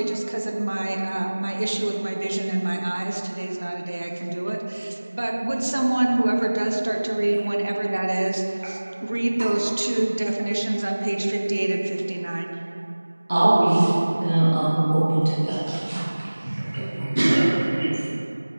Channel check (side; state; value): both; inverted; correlation -1.00